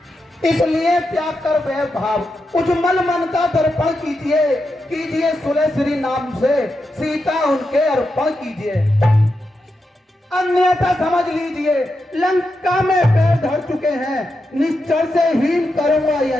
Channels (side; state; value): both; normal; correlation 0.87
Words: इसलिए त्याग कर वह भाव, उज्जवल मन का दर्पण कीजिए, कीजिए सुलह श्री नाम से सीता उनके अर्पण कीजिए। अन्यथा समझ लीजिए लंका में पैर धर चुके हैं, निश्चर से हीन करूंगा